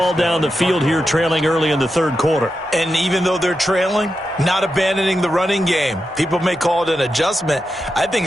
down the field here, trailing early in the third quarter. And even though they're trailing, not abandoning the running game. People may call it an adjustment. I think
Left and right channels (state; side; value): normal; both; correlation 0.88